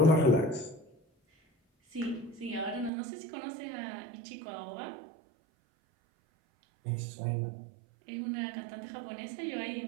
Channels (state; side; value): drops out; left; at 2.9 s